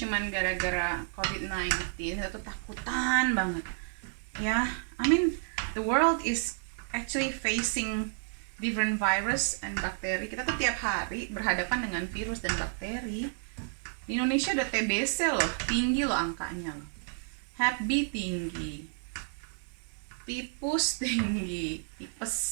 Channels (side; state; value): left; silent; 57 dB below the other